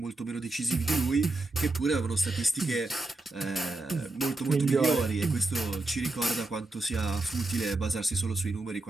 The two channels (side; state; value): left; quieter; 3.0 dB